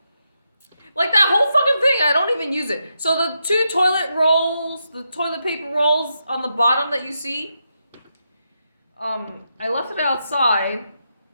Like that whole fucking thing, I don't even use it. So the two toilet rolls, the toilet paper rolls on the bottom that you see, I left it outside,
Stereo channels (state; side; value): inverted; both; correlation -0.84